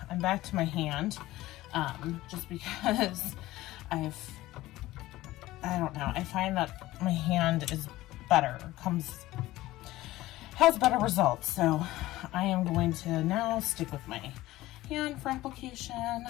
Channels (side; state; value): right; quieter; 16.9 dB